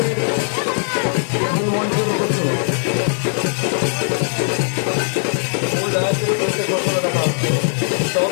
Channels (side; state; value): right; silent; 66 dB below the other